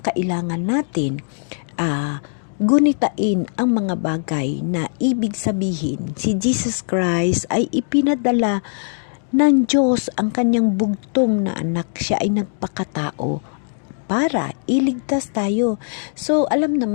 natin gunitain ang mga bagay na ibig sabihin si Jesus Christ ay ipinadala ng Diyos ang kanyang bugtong na anak. Siya ay nagpakatao para iligtas tayo. So, alam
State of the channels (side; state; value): right; silent; digital silence